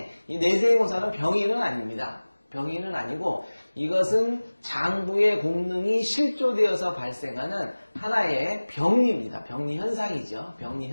이 내생오사는 병인은 아닙니다. 병인은 아니고 이것은 장부의 공능이 실조되어서 발생하는 하나의 병리입니다. 병리 현상이죠. 병리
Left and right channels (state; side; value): inverted; both; correlation -1.00